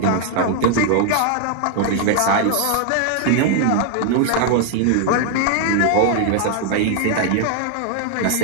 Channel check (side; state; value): both; different; correlation 0.00